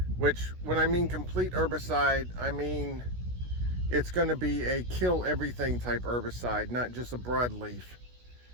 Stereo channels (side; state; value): left; late; 16 ms